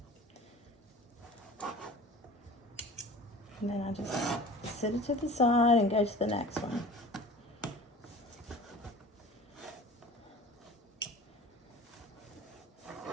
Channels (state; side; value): normal; both; correlation 0.41